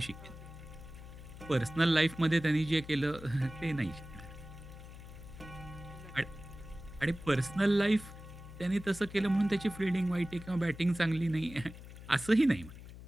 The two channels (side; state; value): left; noise; hum, 15 dB below the sound